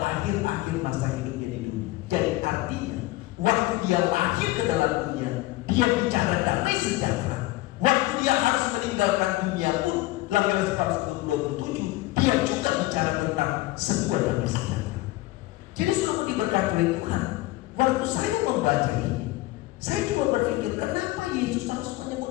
akhir-akhir masa hidupnya di dunia. Jadi artinya waktu Dia lahir ke dalam dunia, Dia bicara damai sejahtera. Waktu Dia harus meninggalkan dunia pun, Yohanes 14:27, Dia juga bicara tentang sebuah damai sejahtera. Jadi sudah diberkati oleh Tuhan. Waktu saya membaca ini, saya coba berpikir kenapa Yesus harus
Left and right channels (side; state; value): right; quieter; 18.8 dB